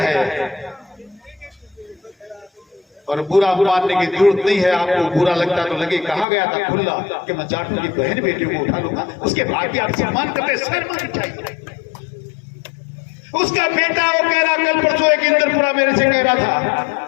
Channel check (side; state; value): right; drops out; at 6.2 s